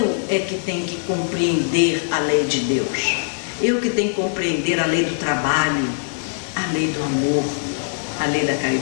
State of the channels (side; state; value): right; silent; digital silence